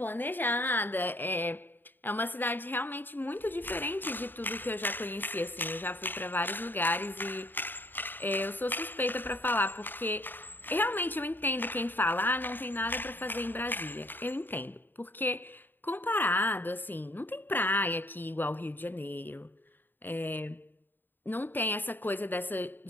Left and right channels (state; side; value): late; right; 0.093 ms